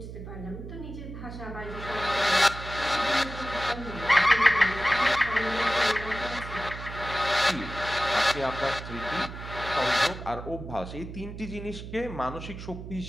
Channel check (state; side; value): noise; right; hum, 10 dB below the sound